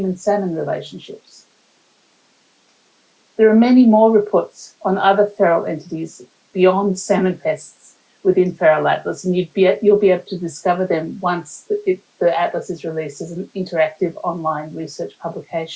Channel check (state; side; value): identical; both; correlation 1.00